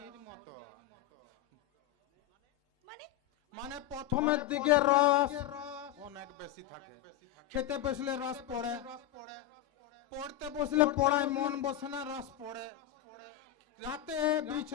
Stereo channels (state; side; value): quieter; right; 12.0 dB